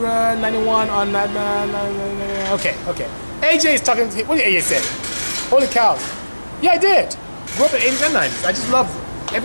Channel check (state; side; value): inverted; both; correlation -1.00